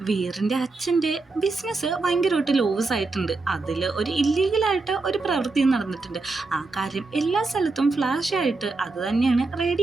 വീറിന്റെ അച്ഛന്റെ ബിസിനസ് ഭയങ്കരമായിട്ട് ലോസ് ആയിട്ടുണ്ട്. അതിൽ ഒരു ഇല്ലീഗലായിട്ട് ഒരു പ്രവൃത്തി നടന്നിട്ടുണ്ട്. ആ കാര്യം എല്ലാ സ്ഥലത്തും ഫ്ലാഷ് ആയിട്ട് അത് തന്നെയാണ്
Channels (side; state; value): left; quieter; 3.6 dB